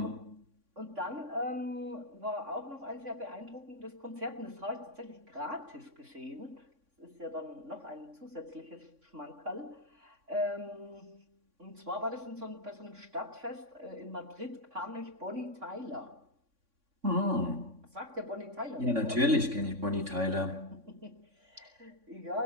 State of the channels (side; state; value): left; late; 3.6 ms